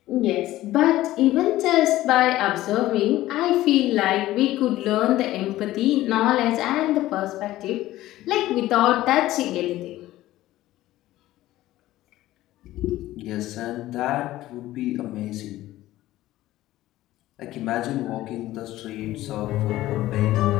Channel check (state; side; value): quieter; right; 15.6 dB